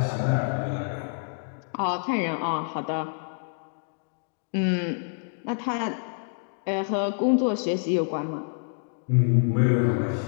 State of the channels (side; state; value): right; silent; digital silence